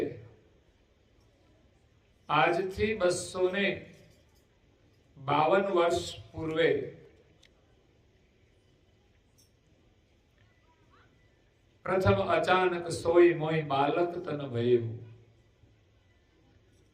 આજથી 252 વર્ષ પૂર્વે પ્રથમ અચાનક સોઈ મોઈ બાલક તન ભયું.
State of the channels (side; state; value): both; identical; correlation 1.00